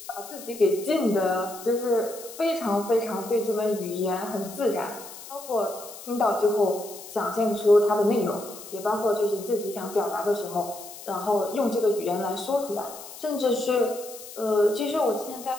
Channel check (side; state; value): left; noise; hiss, 15 dB below the sound